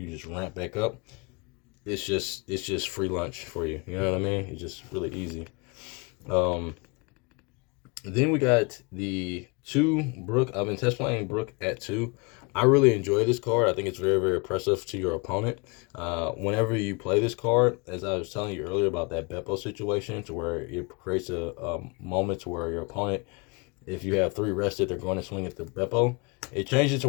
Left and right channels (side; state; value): right; quieter; 30.3 dB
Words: just ramp back up, it's just free lunch for you. You know what I mean? It's just really easy. Then we got the 2 Brook. I've been test playing Brook at 2. I really enjoy this card. I think it's very, very oppressive to your opponent. Whenever you play this card, as I was telling you earlier about that Beppo situation, to where it creates a moment to where your opponent, if you have 3 rested, they're going to swing at the Beppo. It changes to